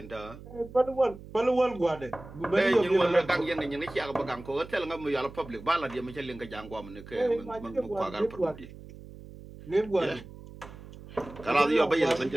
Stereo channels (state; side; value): noise; right; hum, 16 dB below the sound